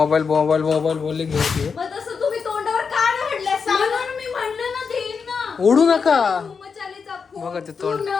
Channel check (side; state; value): right; quieter; 5.6 dB